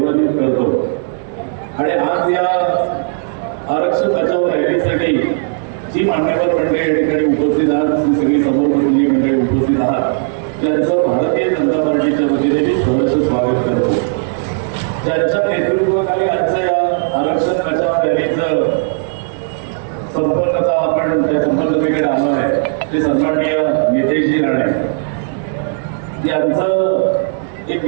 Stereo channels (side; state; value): left; silent; digital silence